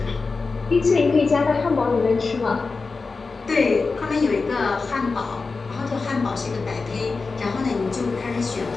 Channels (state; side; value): quieter; right; 4.2 dB